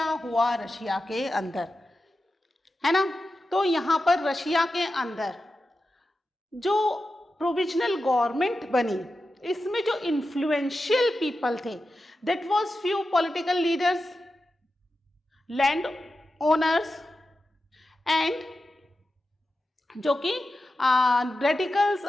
हुआ रशिया के अंदर, है ना। तो यहां पर रशिया के अंदर जो प्रोविजनल गवर्नमेंट बनी, इसमें जो इन्फ्लुएंशियल पीपल थे, that was few political leaders, land owners and जो कि रेडिकल्स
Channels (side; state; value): both; normal; correlation 0.91